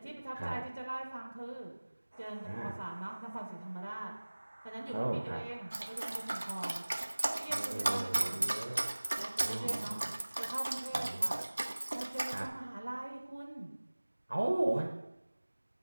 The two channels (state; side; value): inverted; both; correlation -1.00